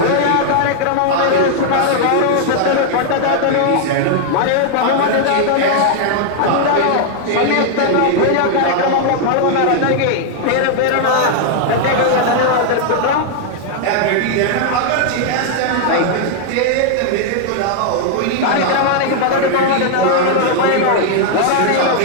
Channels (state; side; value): different; both; correlation 0.00